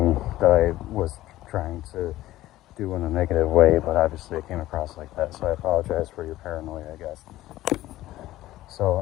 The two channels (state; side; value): quieter; right; 15.6 dB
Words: that I was trying to do in a negative way, but obviously it came across like that. So I apologize for your paranoia, I guess. So,